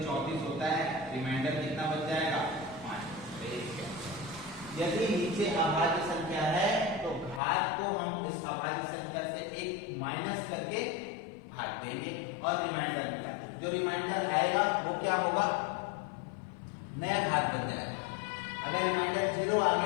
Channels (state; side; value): drops out; right; at 7.4 s